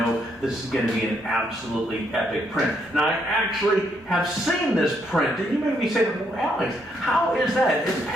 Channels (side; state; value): both; normal; correlation 0.74